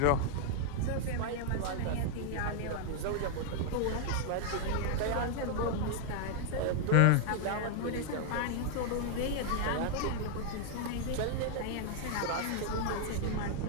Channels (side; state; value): both; different; correlation 0.00